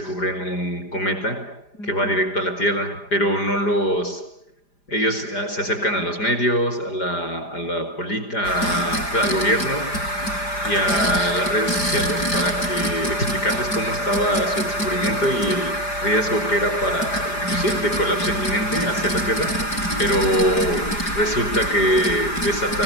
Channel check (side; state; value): right; late; 5.0 ms